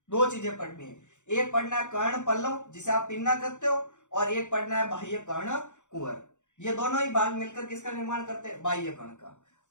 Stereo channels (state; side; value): late; right; 0.85 ms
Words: दो चीजें पढ़नी है, एक पढ़ना है कर्ण पल्लव जिसे आप पिन्ना कहते हो, और एक पढ़ना है बाह्य कर्ण कुहर। ये दोनों ही भाग मिलकर किसका निर्माण करते हैं, बाह्य कर्ण का।